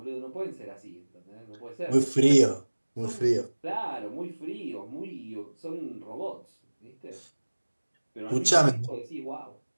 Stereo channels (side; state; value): both; inverted; correlation -1.00